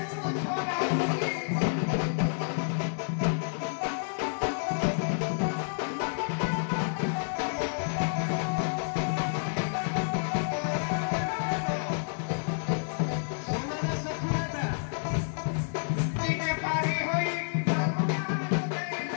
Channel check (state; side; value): silent; right; 57 dB below the other